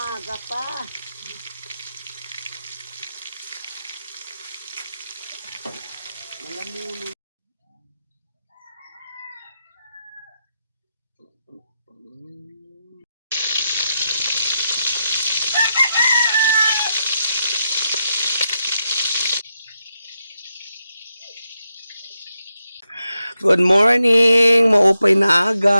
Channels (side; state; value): both; inverted; correlation -0.85